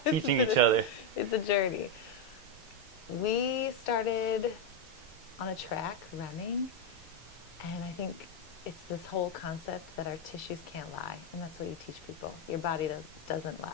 teaching each other. It's a journey. We started on a track running, and I think it's this whole concept that our tissues can't lie, and that's what you teach people. Your body doesn't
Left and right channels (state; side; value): normal; both; correlation 0.04